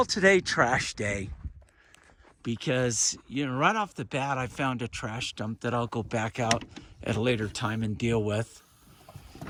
today trash day, because, you know, right off the bat, I found a trash dump that I'll go back out at a later time and deal with.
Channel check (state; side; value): identical; both; correlation 1.00